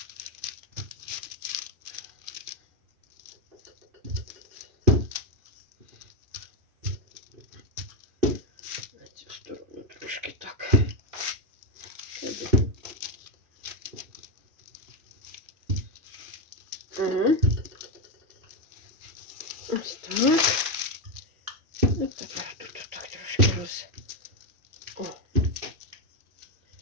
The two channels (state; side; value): late; left; 2.5 ms